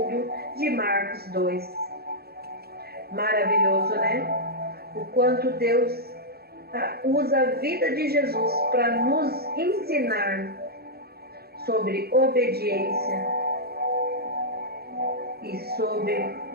de Marcos 2. Maravilhoso, né? O quanto Deus usa a vida de Jesus para nos ensinar sobre obediência e sobre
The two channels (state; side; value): late; left; 0.46 ms